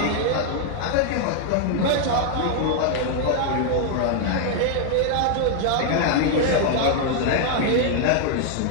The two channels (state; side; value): different; both; correlation 0.00